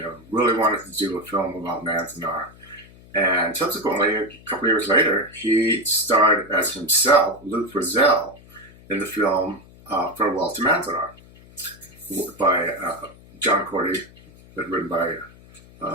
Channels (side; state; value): left; noise; hum, 23 dB below the sound